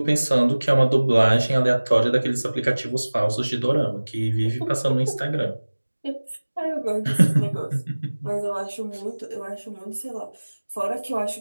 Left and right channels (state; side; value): inverted; both; correlation -1.00